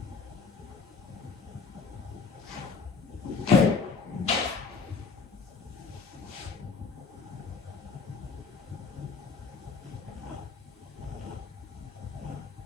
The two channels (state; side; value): quieter; right; 4.8 dB